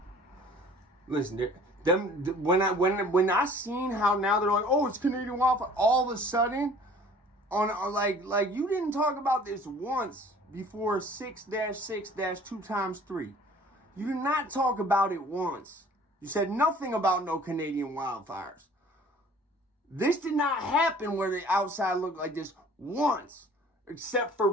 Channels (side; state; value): both; normal; correlation 0.50